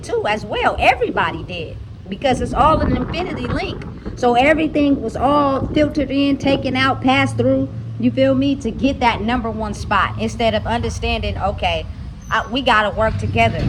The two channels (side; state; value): both; identical; correlation 1.00